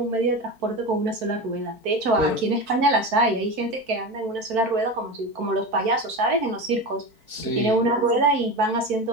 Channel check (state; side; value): late; left; 4.5 ms